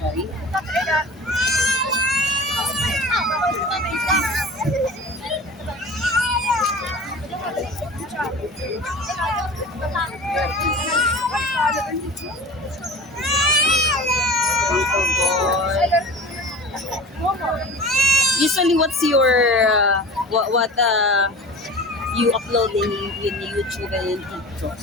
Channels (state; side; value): normal; both; correlation 0.37